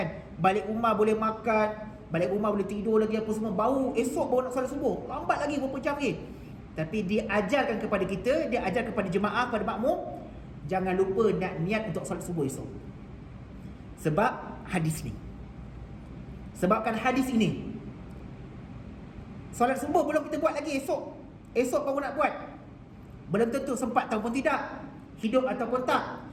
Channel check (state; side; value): identical; both; correlation 1.00